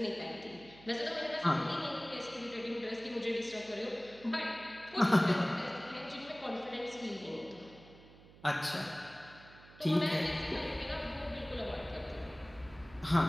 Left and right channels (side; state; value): right; noise; hum, 22 dB below the sound